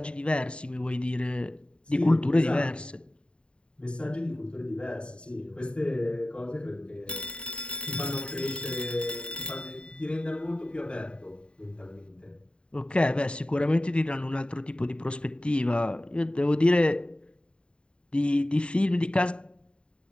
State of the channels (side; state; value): right; late; 0.053 ms